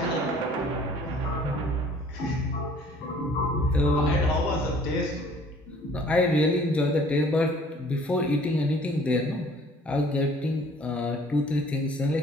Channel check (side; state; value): both; normal; correlation 0.54